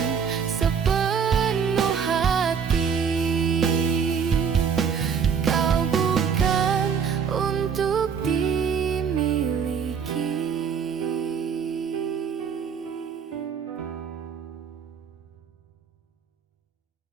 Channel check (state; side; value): quieter; left; 6.9 dB